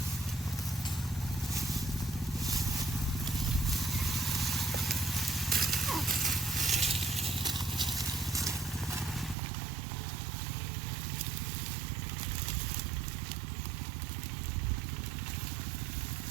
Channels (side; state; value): left; drops out; at 9.3 s